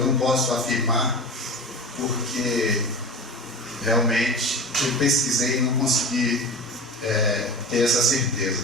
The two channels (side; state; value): both; normal; correlation 0.31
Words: não posso afirmar, porque realmente eu pesquisei e não consegui ter essa certeza.